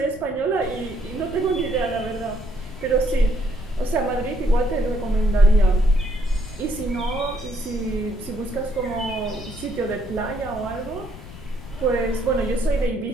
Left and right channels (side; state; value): left; noise; rumble, 15 dB below the sound